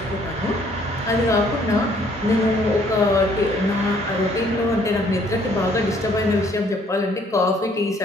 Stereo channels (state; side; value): normal; both; correlation 0.62